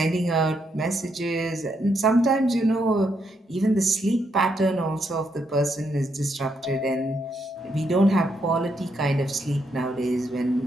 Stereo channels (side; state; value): both; normal; correlation 0.78